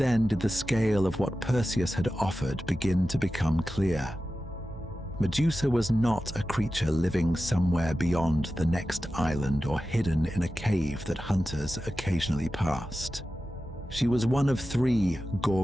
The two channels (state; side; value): normal; both; correlation 0.93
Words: did the scale of what Perseus had offered begin to become clear. Medusa was not a creature living somewhere beyond the next island or hidden in a cave that hunters occasionally passed. She was one of 3